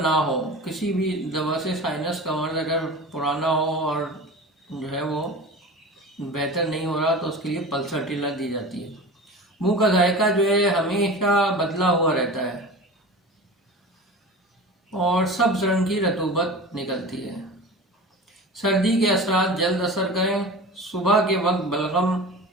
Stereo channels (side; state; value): both; normal; correlation 0.34